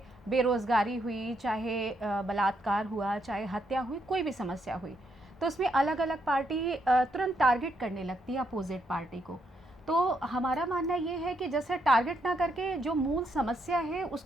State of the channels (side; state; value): both; normal; correlation 0.77